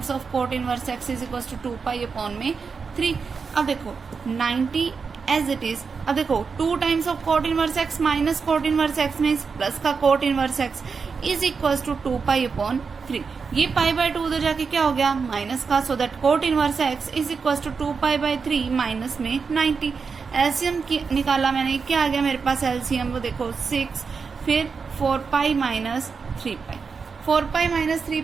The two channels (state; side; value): quieter; left; 5.3 dB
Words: of cot inverse x is equal to 2π/3। अब देखो 90 एज इट इज। अब देखो 2 times of cot inverse x minus cot inverse x means plus का cot inverse x is equal to 2π/3। ये π/2 उधर जाके क्या हो गया माइनस का, so that cot inverse x is equal to 2π/3 minus में 90। एलसीएम निकाला मैंने, क्या आ गया मेरे पास एलसीएम, वो देखो 6, फिर 4π माइनस 3π। 4π माइनस